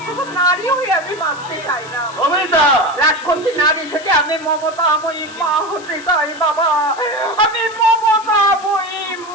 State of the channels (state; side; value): noise; left; hiss, 19 dB below the sound